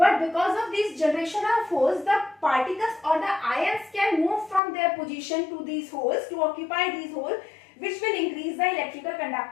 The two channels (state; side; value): drops out; right; at 4.6 s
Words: but because of this generation of holes the particles or the ions can move from their position to these holes to occupy these holes, which will increase the electrical